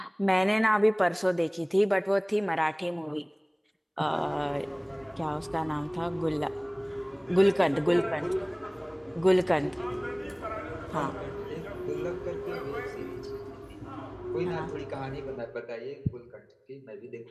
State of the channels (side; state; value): both; identical; correlation 1.00